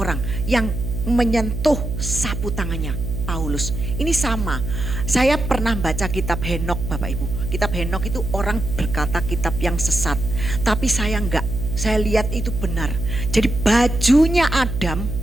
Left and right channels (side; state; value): right; noise; hum, 5 dB below the sound